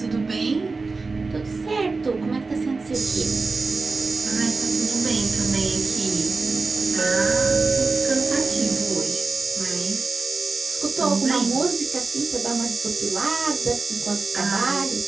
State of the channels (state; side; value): quieter; left; 3.9 dB